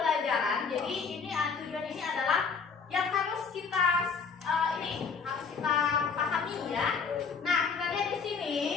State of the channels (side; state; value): right; quieter; 5.6 dB